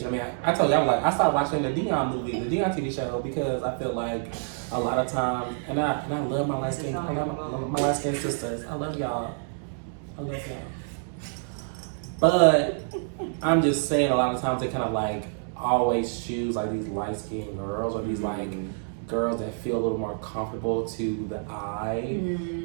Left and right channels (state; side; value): silent; left; digital silence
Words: I mean, I told you, I was like, I started watching the Dion movie, the Dion TV show, because I feel like a lot of times, and I love my light skin, my light skin sisters. I love y'all. But I'm just saying a lot of times they kind of like always choose like these light skinned girls or these like girls that feel a little more comfortable to the eye.